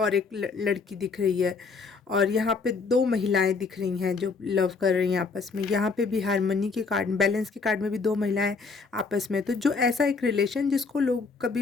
एक लड़की दिख रही है, और यहाँ पे दो महिलाएं दिख रही हैं जो लव कर रही हैं आपस में। यहाँ पे भी हारमोनी के कार्ड, बैलेंस के कार्ड में भी दो महिलाएं आपस में। तो जो ऐसा एक रिलेशन जिसको लोग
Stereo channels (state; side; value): quieter; right; 4.6 dB